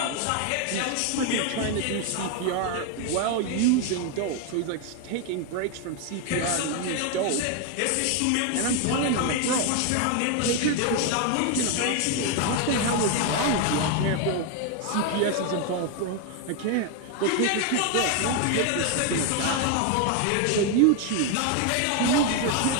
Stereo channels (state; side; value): different; both; correlation 0.01